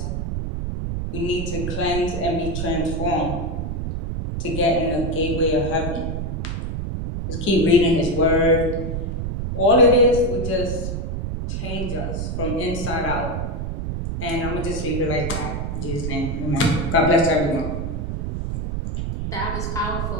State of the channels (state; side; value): noise; right; rumble, 3 dB below the sound